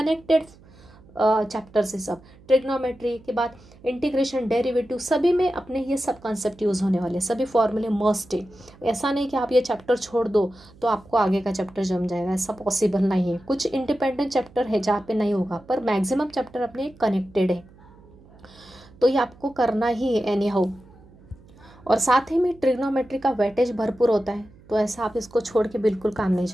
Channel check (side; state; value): right; noise; hum, 25 dB below the sound